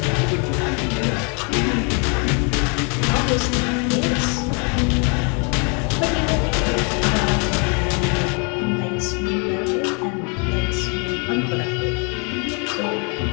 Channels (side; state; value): right; quieter; 36.1 dB